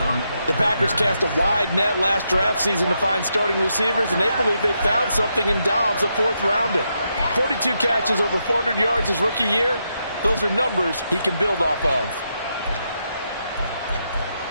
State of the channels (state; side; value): inverted; both; correlation -0.82